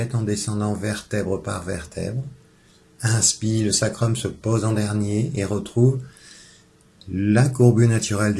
en descendant vertèbre par vertèbre. Inspire, le sacrum se pose en dernier et retrouve la courbure naturelle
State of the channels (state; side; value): identical; both; correlation 1.00